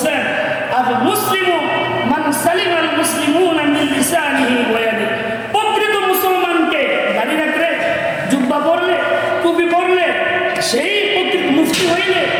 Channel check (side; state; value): both; identical; correlation 1.00